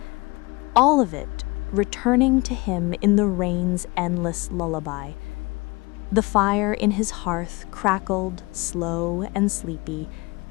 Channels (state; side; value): quieter; right; 25.0 dB